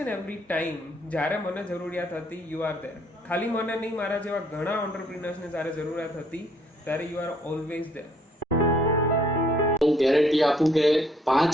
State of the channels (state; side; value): normal; both; correlation 0.65